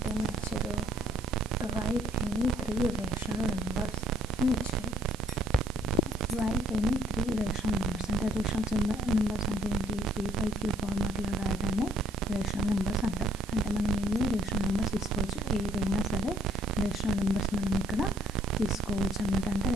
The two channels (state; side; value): noise; right; hiss, 18 dB below the sound